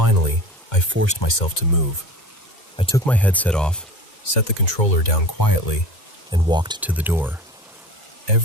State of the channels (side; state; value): both; normal; correlation 0.36